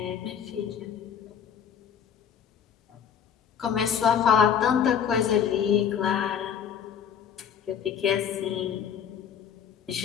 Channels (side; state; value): right; quieter; 8.1 dB